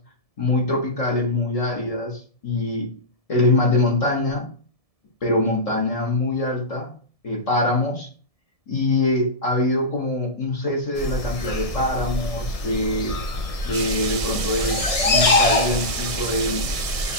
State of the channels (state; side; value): late; right; 1.7 ms